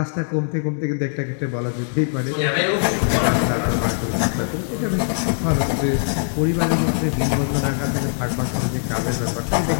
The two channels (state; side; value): silent; right; digital silence